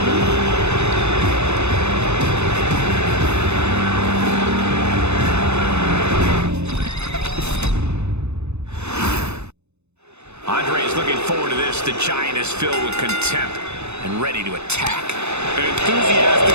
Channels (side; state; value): left; late; 0.81 ms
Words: Looking forward to this. The Giant is filled with contempt and ready to attack. An enthusiastic